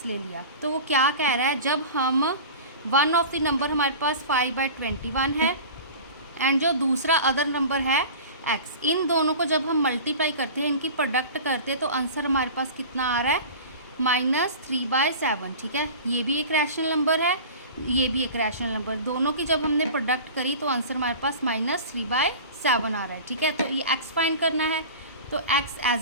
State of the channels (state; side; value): inverted; both; correlation -0.36